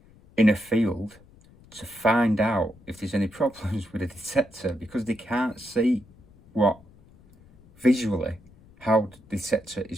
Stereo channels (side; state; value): left; noise; rumble, 26 dB below the sound